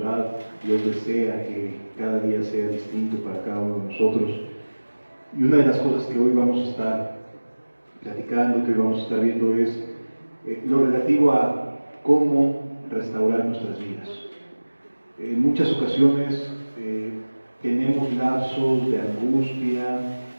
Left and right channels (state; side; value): inverted; both; correlation -1.00